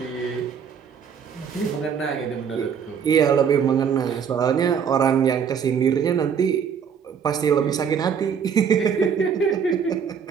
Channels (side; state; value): left; quieter; 7.1 dB